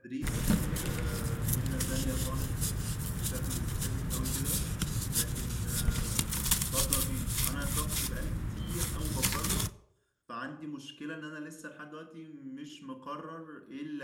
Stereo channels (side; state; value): both; identical; correlation 1.00